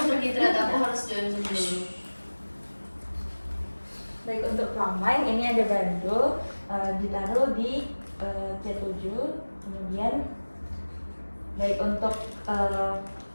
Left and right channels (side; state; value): both; inverted; correlation -1.00